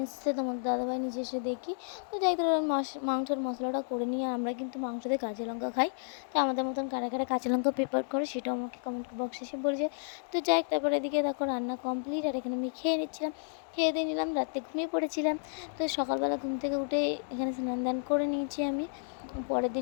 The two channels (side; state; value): right; silent; digital silence